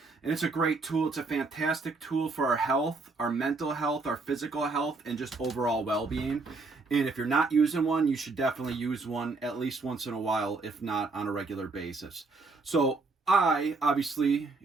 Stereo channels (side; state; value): left; quieter; 3.8 dB